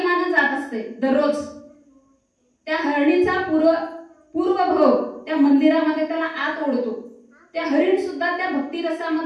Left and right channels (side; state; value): both; identical; correlation 1.00